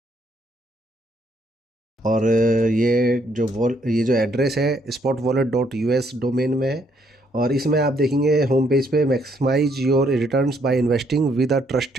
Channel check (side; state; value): both; normal; correlation 0.70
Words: और ये जो एड्रेस है spotwallet.us डोमेन में है। और इसमें आप देखेंगे होम पेज पे maximise your returns by investing with a